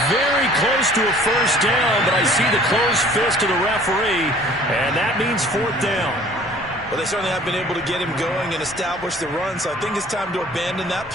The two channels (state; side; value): normal; both; correlation 0.51